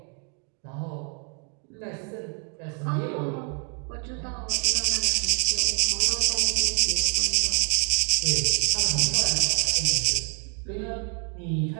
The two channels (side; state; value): left; quieter; 39.7 dB